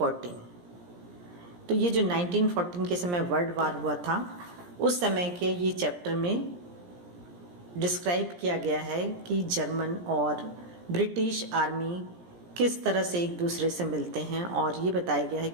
तो ये जो 1914 के समय world war हुआ था, उस समय के ये चैप्टर में डिस्क्राइब किया गया है कि जर्मन और ब्रिटिश आर्मी किस तरह से एक दूसरे से मिलते हैं, और ये बताया गया है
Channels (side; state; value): left; late; 17 ms